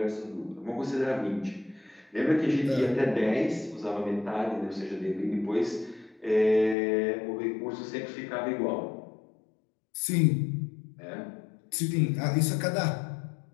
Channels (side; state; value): right; drops out; at 6.8 s